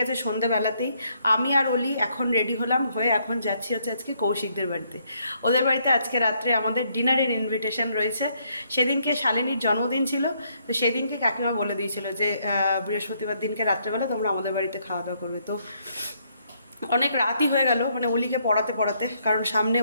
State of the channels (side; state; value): both; inverted; correlation -0.72